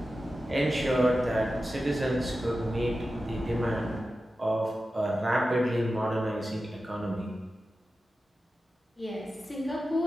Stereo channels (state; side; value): normal; both; correlation 0.93